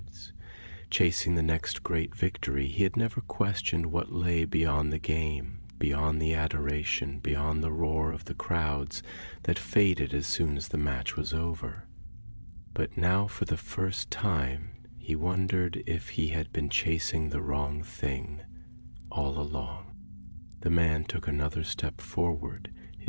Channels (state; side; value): inverted; both; correlation -1.00